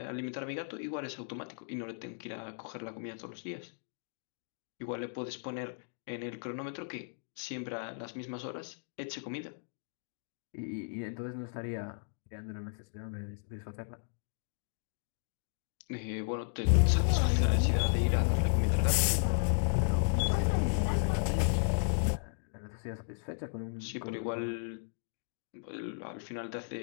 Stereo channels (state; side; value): silent; right; digital silence